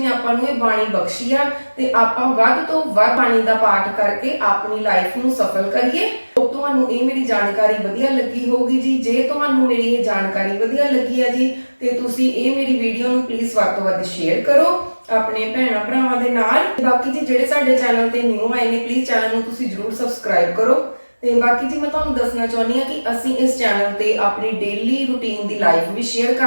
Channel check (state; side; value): inverted; both; correlation -1.00